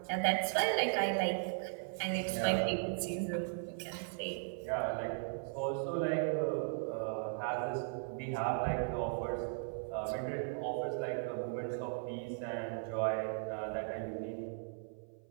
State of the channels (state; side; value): silent; left; 53 dB below the other